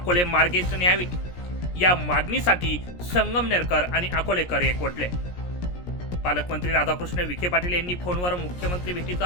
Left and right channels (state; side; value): late; right; 17 ms